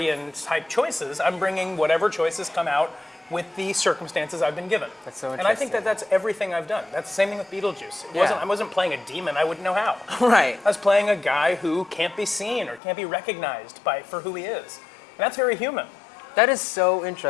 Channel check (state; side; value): drops out; right; at 12.8 s